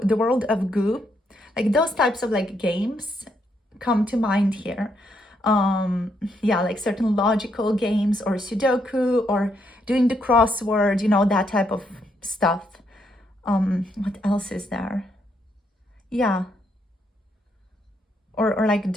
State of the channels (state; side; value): normal; both; correlation 0.76